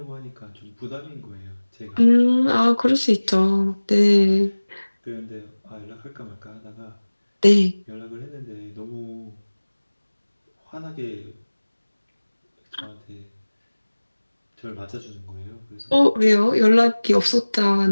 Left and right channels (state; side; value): inverted; both; correlation -1.00